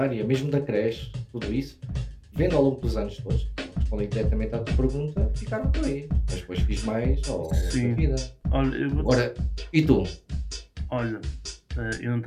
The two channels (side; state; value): both; identical; correlation 1.00